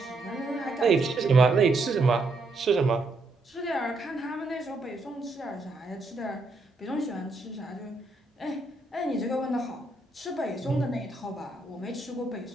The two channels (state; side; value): quieter; left; 3.0 dB